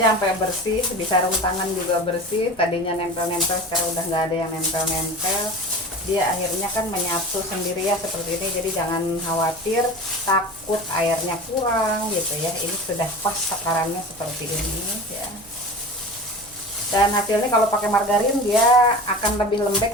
sampai bersih, sebisa sarung tangan juga bersih. Tadinya nempel-nempel, sekarang udah nggak ada yang nempel-nempel. dia akhirnya kan menyatu sendiri ya seperti ini. Jadi jangan khawatir takut airnya kurang gitu ya. Ini sudah pas takarannya seperti ini ya. Dan hasilnya kalau pakai margarin dia akan lebih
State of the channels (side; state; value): right; noise; rumble, 26 dB below the sound